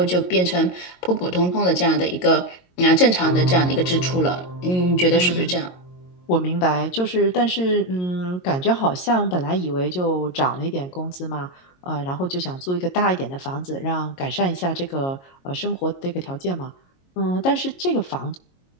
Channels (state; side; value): late; right; 22 ms